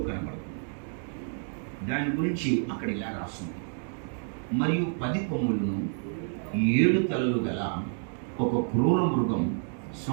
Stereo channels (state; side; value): silent; left; 58 dB below the other